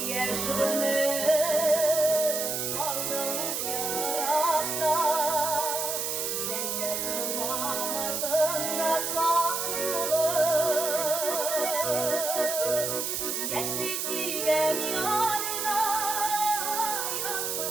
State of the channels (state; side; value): noise; right; hiss, 1 dB below the sound